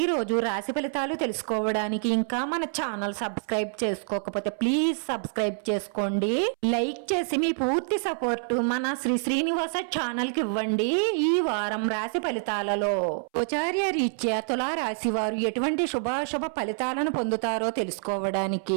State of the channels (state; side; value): silent; left; 60 dB below the other